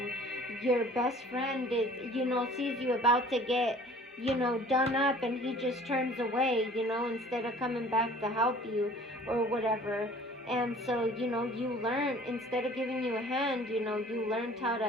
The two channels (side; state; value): both; normal; correlation 0.49